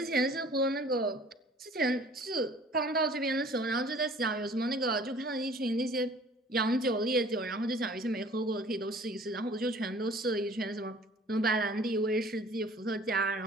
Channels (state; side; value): normal; both; correlation 0.51